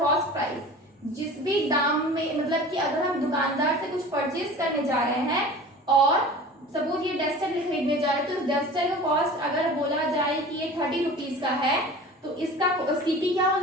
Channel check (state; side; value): normal; both; correlation 0.39